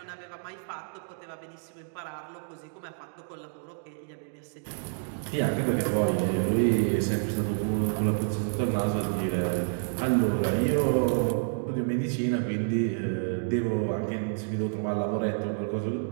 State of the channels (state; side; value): silent; left; digital silence